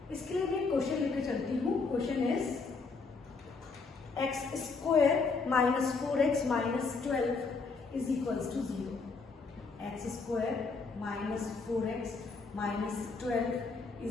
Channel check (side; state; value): right; quieter; 4.4 dB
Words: इसके लिए मैं क्वेश्चन लेकर चलती हूँ। Question is x square minus 4x minus 12 is equals to 0। x square minus 4x minus 12